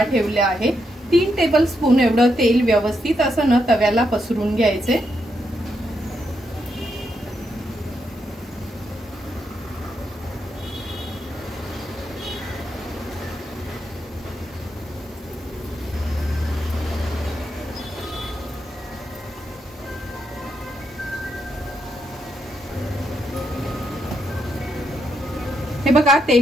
ठेवला आहे। 3 टेबलस्पून एवढं तेल व्यवस्थित असं न तव्याला पसरून घ्यायचे। हे बघा,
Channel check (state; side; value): normal; both; correlation 0.81